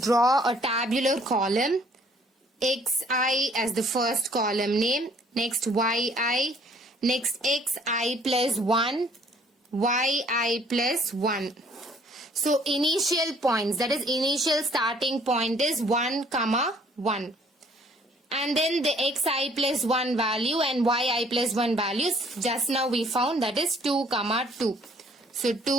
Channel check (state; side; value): normal; both; correlation 0.59